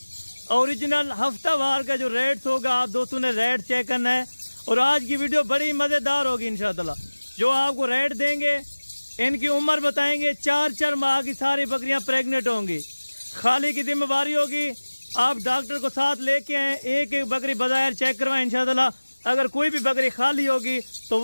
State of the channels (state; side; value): inverted; both; correlation -1.00